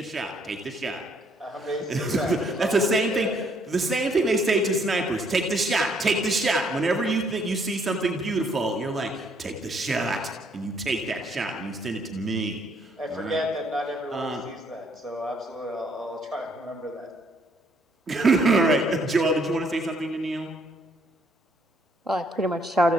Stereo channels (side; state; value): both; normal; correlation 0.67